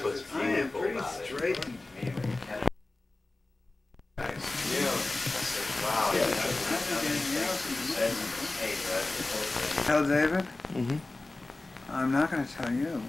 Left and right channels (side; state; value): right; quieter; 3.0 dB